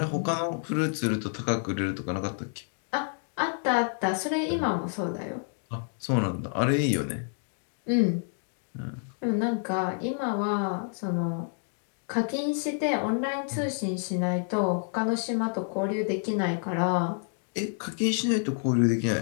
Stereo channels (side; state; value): right; silent; 57 dB below the other